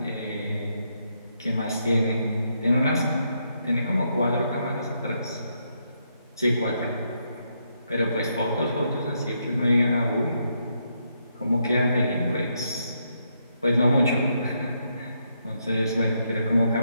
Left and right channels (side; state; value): both; inverted; correlation -0.78